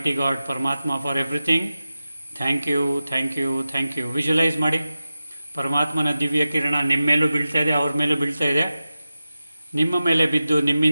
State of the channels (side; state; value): both; inverted; correlation -0.94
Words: God, Paramatma, for everything. Thank you, thank you, thank you. ವಿಜುವಲೈಸ್ ಮಾಡಿ, ಪರಮಾತ್ಮನ ದಿವ್ಯ ಕಿರಣ ನಿಮ್ಮ ಮೇಲೂ ಬೀಳ್ತಾ ಇದೆ, ಅವ್ರ ಮೇಲೂ ಬೀಳ್ತಾ ಇದೆ, ನಿಮ್ಮ ಮೇಲೆ ಬಿದ್ದು